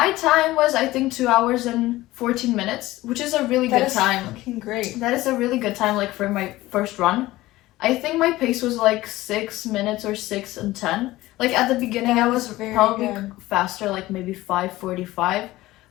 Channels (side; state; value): right; quieter; 17.6 dB